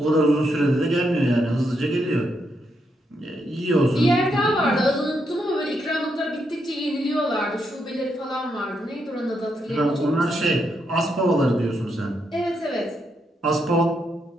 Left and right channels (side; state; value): both; normal; correlation 0.80